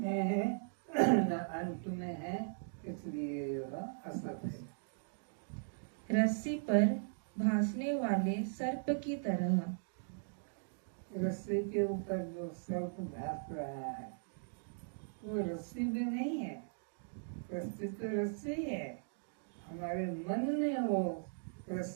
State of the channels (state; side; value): silent; left; digital silence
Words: है न अंत में है, इसलिए यह असत है। रस्सी पर भासने वाले सर्प की तरह। रस्सी के ऊपर जो सर्प भास रहा है वो रस्सी में नहीं है, रस्सी तो रस्सी है, हमारे मन में वो